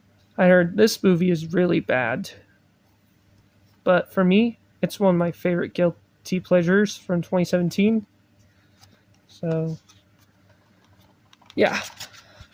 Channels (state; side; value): identical; both; correlation 1.00